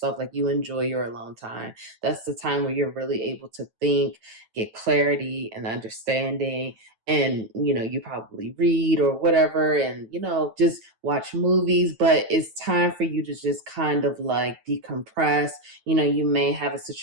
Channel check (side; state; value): left; late; 9.1 ms